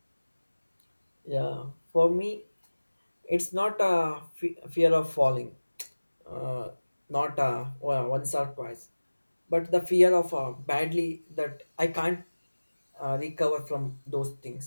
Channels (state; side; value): inverted; both; correlation -1.00